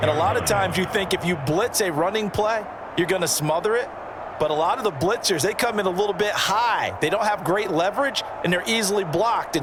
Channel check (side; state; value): both; identical; correlation 1.00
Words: And a lot of times you think if you blitz a running play, you're going to smother it. But a lot of the blitzers, they come in a little bit high. They don't have great leverage, and they're easily blocked